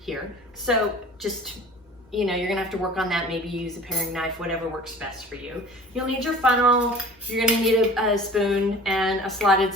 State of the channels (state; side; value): normal; both; correlation 0.44